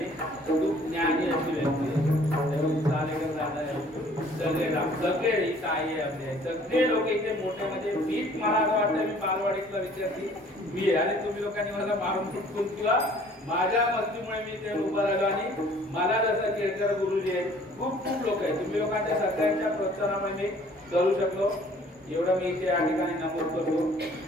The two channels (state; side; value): normal; both; correlation 0.55